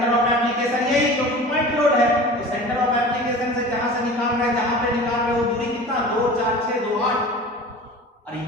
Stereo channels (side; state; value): both; normal; correlation 0.38